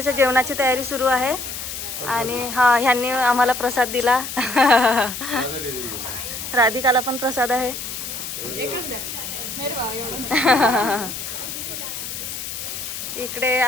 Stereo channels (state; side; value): noise; left; hiss, 7 dB below the sound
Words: जेवणाची तयारी सुरू आहे आणि ह्यांनी आम्हाला प्रसाद दिला. राधिकाला पण प्रसाद आहे. इकडे